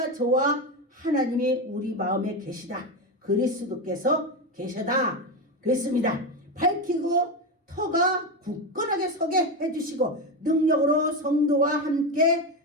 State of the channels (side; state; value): both; normal; correlation 0.15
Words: 저와 하나님이 우리 마음에 계시다. 그리스도께서 계셔다. 그랬습니다. 밝히고 터가 굳건하게 서게 해주시고 능력으로 성도와 함께